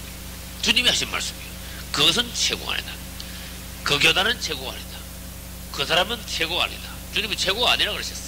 주님이 하신 말씀이에요. 그것은 최고가 아니다. 그 교단은 최고가 아니다. 그 사람은 최고가 아니다. 주님은 최고가 아니라고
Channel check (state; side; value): identical; both; correlation 1.00